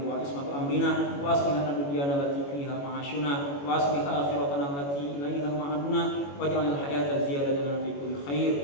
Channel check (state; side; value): late; right; 21 ms